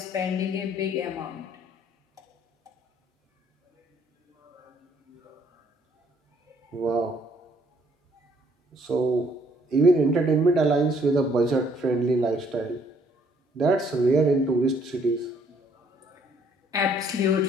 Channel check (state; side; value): normal; both; correlation 0.64